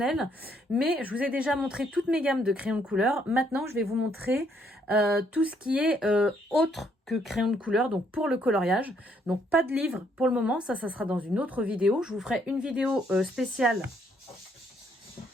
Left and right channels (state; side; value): normal; both; correlation 0.69